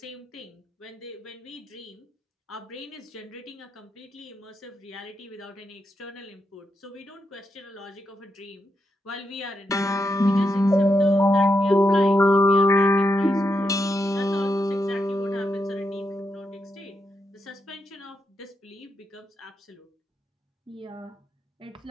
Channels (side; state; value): both; normal; correlation 0.83